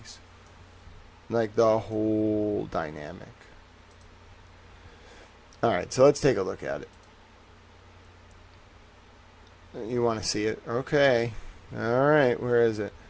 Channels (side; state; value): both; identical; correlation 1.00